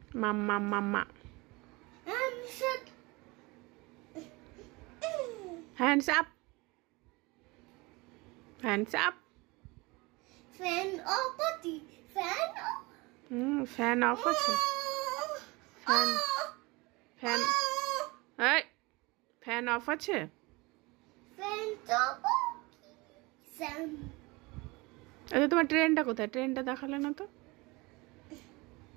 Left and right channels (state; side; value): quieter; left; 24.4 dB